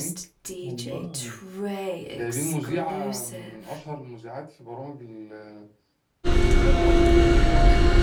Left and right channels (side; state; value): both; identical; correlation 1.00